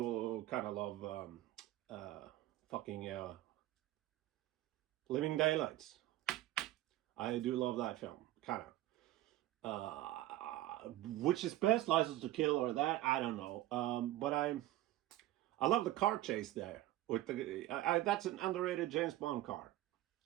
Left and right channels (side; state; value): left; quieter; 15.2 dB